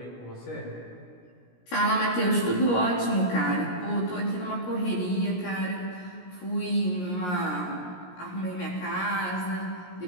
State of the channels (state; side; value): late; right; 17 ms